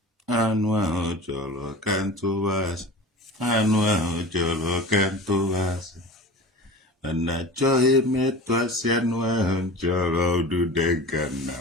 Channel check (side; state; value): both; normal; correlation 0.35